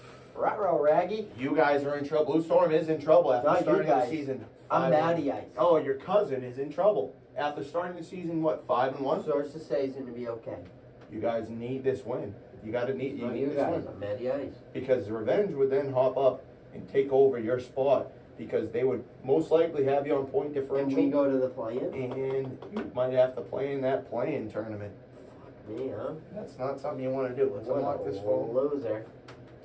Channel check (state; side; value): identical; both; correlation 1.00